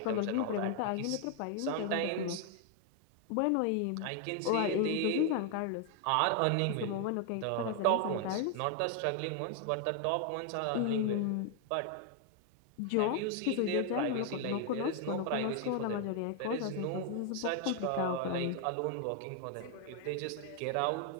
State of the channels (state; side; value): different; both; correlation 0.00